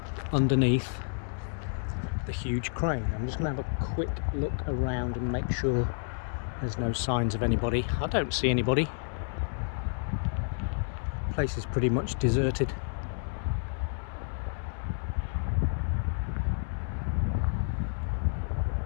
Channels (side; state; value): right; silent; 58 dB below the other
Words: underneath the huge crane. I'm just going to have a quick look around and make sure there's no signs of anybody. I don't see anybody. The place is pretty much deserted.